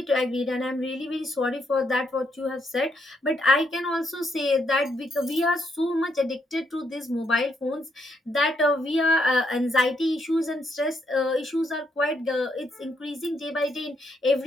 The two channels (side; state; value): both; normal; correlation 0.76